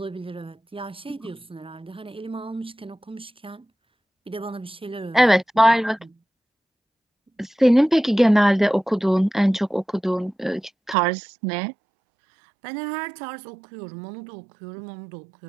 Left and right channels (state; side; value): drops out; left; at 11.0 s